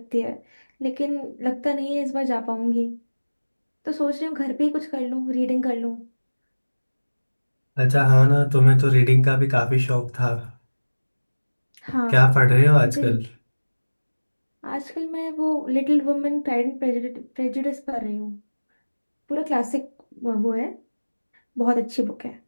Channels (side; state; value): both; inverted; correlation -1.00